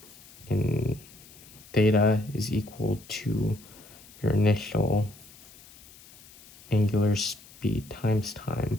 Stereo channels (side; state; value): left; noise; hiss, 22 dB below the sound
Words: theta is equal to your initial angular speed times time